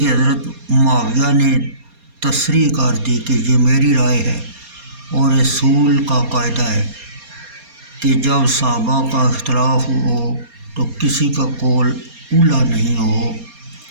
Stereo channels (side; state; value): left; late; 4.2 ms